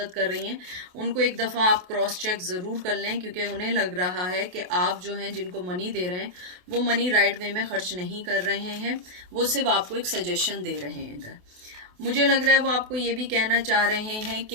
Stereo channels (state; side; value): late; left; 28 ms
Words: कर रही हैं उनको एक दफ़ा आप क्रॉस चेक ज़रूर कर लें, क्योंकि उन्हें लग रहा है कि आप जो हैं जिनको मनी दे रहे हैं वो मनी राइट वे में खर्च नहीं कर रहे हैं, वो सिर्फ आपको एक सजेशन दे रहे हैं इधर। मुझे लग रहा है वो आपको ये भी कहना चाह रहे हैं